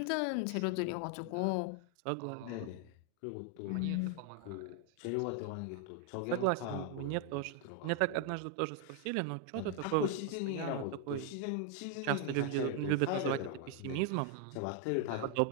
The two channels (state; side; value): different; both; correlation 0.00